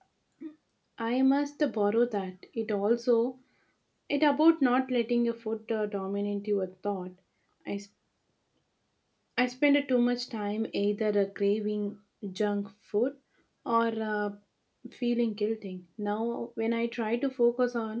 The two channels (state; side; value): identical; both; correlation 1.00